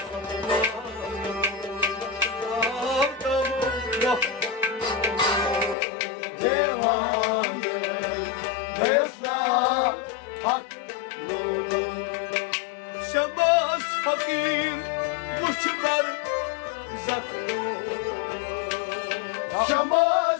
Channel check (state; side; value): drops out; right; at 5.8 s